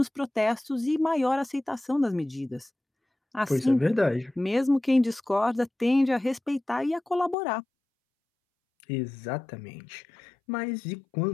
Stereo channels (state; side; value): drops out; right; at 7.4 s